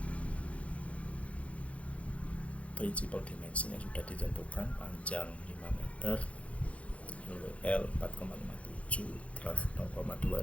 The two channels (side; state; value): right; late; 0.064 ms